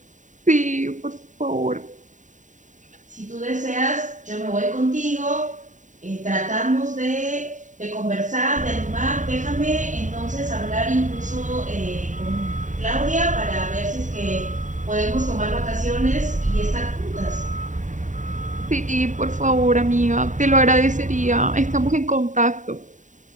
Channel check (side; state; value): left; late; 0.36 ms